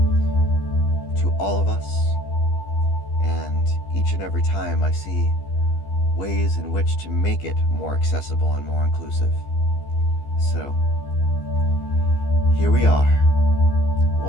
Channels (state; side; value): late; right; 15 ms